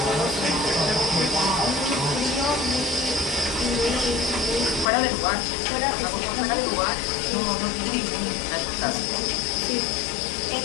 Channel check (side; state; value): right; drops out; at 4.9 s